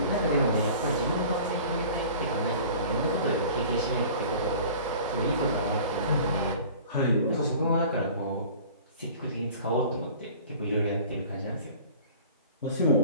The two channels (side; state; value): both; inverted; correlation -0.44